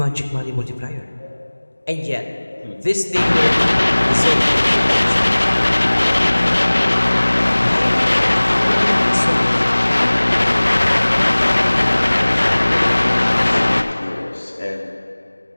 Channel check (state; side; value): inverted; both; correlation -1.00